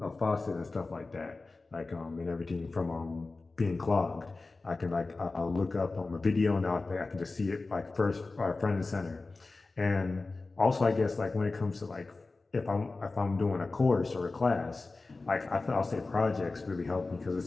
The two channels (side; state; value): right; quieter; 3.5 dB